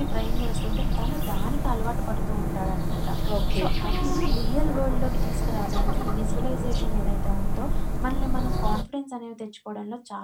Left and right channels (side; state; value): both; identical; correlation 1.00